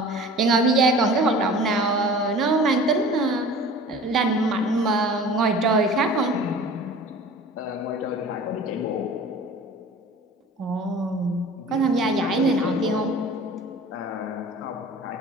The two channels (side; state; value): both; normal; correlation 0.42